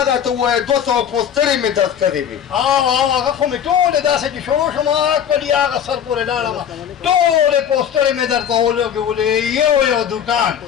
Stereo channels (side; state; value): right; quieter; 8.7 dB